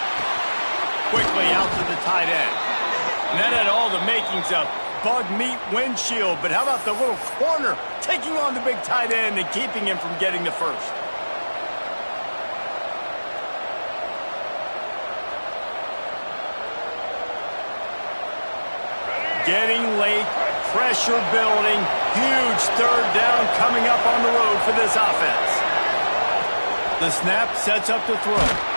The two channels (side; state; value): both; inverted; correlation -1.00